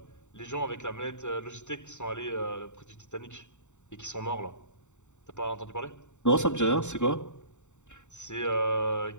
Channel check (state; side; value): late; right; 0.84 ms